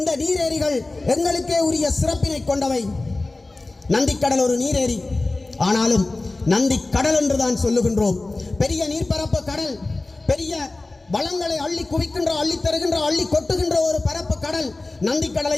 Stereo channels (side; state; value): right; quieter; 3.1 dB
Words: நீரேரிகள் எங்களுக்கே உரிய சிறப்பினை கொண்டவை. நந்திக்கடல் ஒரு நீரேரி, ஆனாலும் நந்திக்கடல் என்றுதான் சொல்லுகின்றோம். பெரிய நீர்ப்பரப்பு கடல், பெரிய வளங்களை அள்ளி குவிக்கின்ற, அள்ளி தருகின்ற, அள்ளி கொட்டுகின்ற ஒரு பரப்பு கடல்.